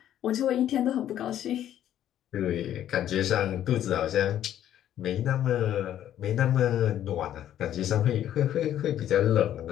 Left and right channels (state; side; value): quieter; right; 11.3 dB